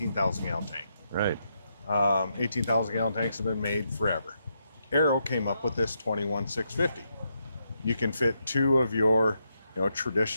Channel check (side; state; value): both; inverted; correlation -0.81